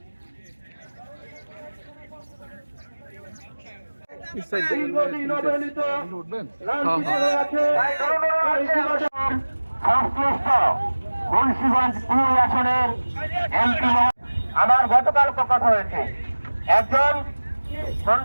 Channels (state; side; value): inverted; both; correlation -1.00